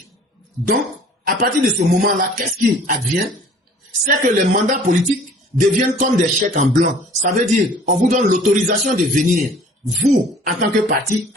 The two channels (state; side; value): normal; both; correlation 0.51